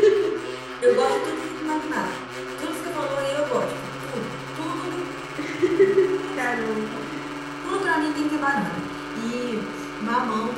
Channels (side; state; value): both; identical; correlation 1.00